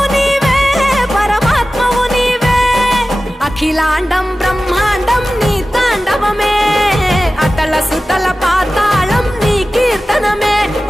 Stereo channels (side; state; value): both; normal; correlation 0.96